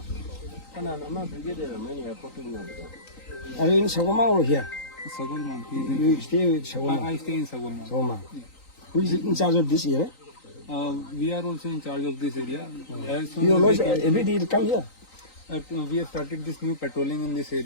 I'm a brigadier. मैंने airport में मिला. Are you in Sagoma or here? Sagulman. He is in. You stay with Sagoma. I stay in Sagulman. Sagoma. Who is in charge of this area? We are also in charge of this area. As soon You as always we can- every day you come here. we have started this new patrolling in this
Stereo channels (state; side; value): late; right; 3.9 ms